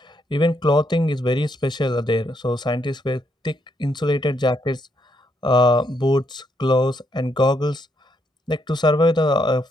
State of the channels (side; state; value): both; normal; correlation 0.76